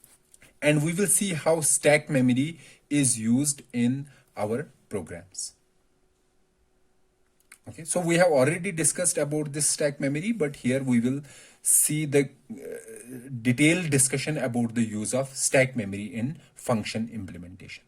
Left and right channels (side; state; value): both; identical; correlation 1.00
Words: and we will see how stack memory is used in our programs. Okay, so we have already discussed about this stack memory, but here we will see the detailed discussion about the use of stack memory in function implementation.